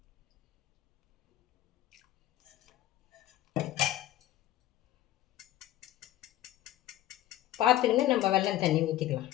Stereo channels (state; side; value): quieter; right; 14.3 dB